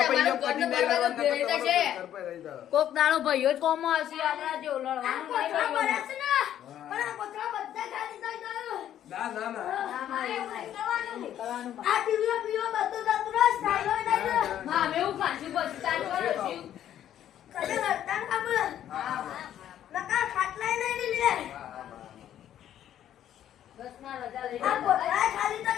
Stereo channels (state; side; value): quieter; right; 11.0 dB